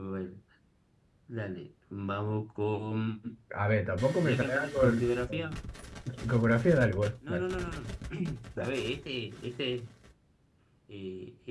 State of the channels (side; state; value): both; identical; correlation 1.00